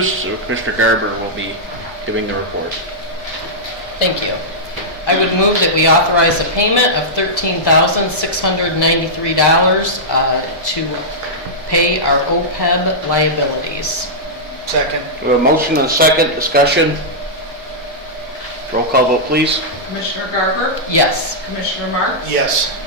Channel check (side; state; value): both; normal; correlation -0.10